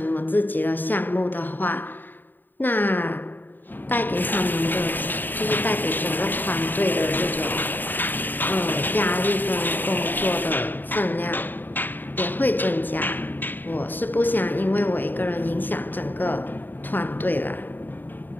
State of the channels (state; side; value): late; right; 0.091 ms